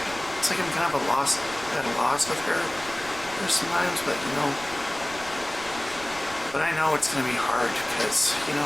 it's like I'm kind of at a loss with her sometimes, but, you know, but I know it's going to be hard, because, you know,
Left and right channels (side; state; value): right; noise; rumble, 17 dB below the sound